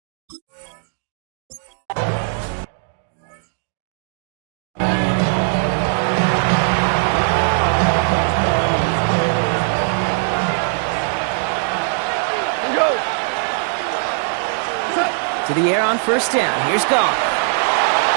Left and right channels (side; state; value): left; silent; 62 dB below the other